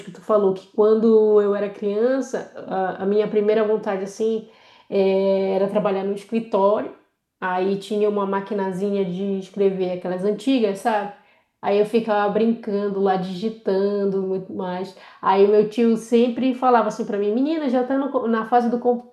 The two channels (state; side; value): identical; both; correlation 1.00